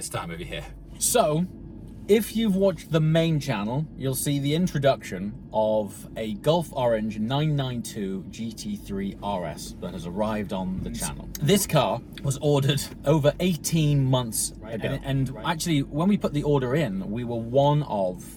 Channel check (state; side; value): identical; both; correlation 1.00